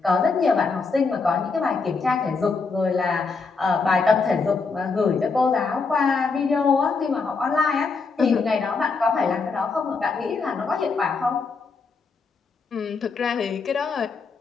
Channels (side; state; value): right; quieter; 4.5 dB